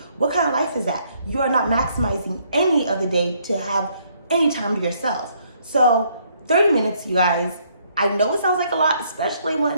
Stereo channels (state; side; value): inverted; both; correlation -0.68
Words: What kind of life is that? You are not maximizing any of the day to have any time to yourself. So 30 minutes, you guys, I know it sounds like a lot, especially